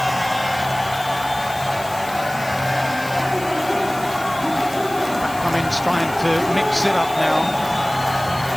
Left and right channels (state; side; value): noise; left; hiss, 16 dB below the sound